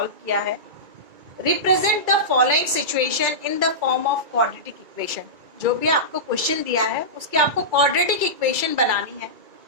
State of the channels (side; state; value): left; late; 2.0 ms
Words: किया है। Represent the following situation in the form of quadratic equation. जो भी आपको क्वेश्चन दिया है उसकी आपको क्वाड्रेटिक इक्वेशन बनानी है।